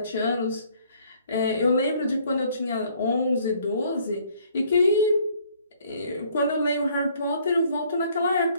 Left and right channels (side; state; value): both; inverted; correlation -0.62